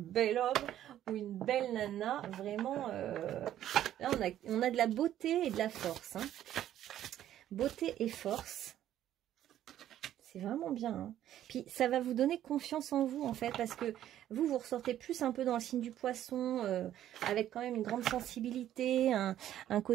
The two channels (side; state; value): left; quieter; 11.9 dB